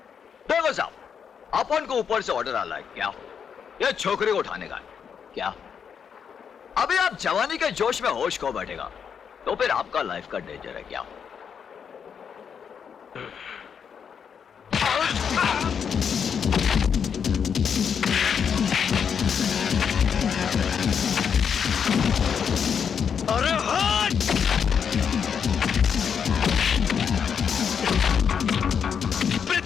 देखो साहब, अपन को ऊपर से ऑर्डर आ रहा है क्या? ये छोकरी को उठाने का है क्या? अभी आप जवानी के जोश में होश खो बैठेगा तो फिर आपका लाइफ का डेंजर है क्या? अरे हट!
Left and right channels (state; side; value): quieter; right; 7.2 dB